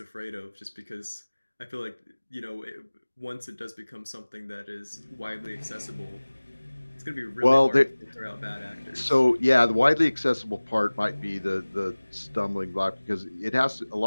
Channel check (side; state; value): both; inverted; correlation -1.00